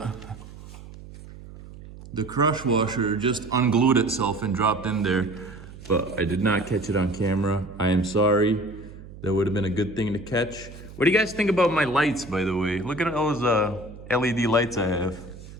The crush washer just unglued itself and dropped in there, but I did not catch it on camera. I am sorry. That would have been a good thing to catch. What do you guys think about my lights, by the way? Look at those LED lights I have.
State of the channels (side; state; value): right; noise; hum, 16 dB below the sound